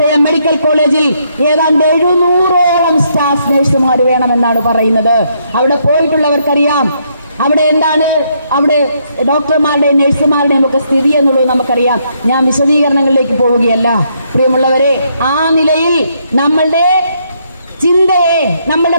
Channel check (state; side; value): inverted; both; correlation -0.73